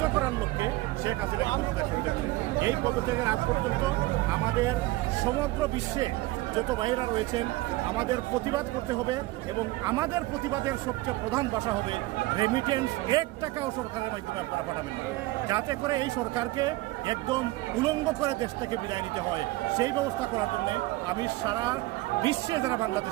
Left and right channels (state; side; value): quieter; left; 19.4 dB